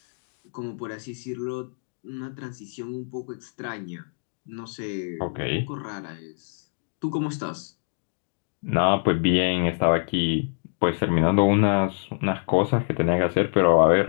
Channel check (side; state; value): right; silent; digital silence